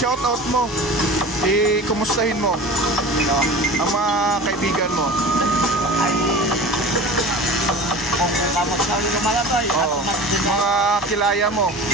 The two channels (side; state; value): both; normal; correlation 0.37